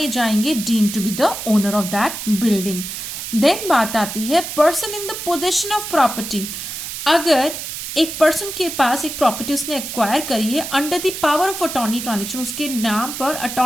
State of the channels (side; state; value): right; noise; hiss, 7 dB below the sound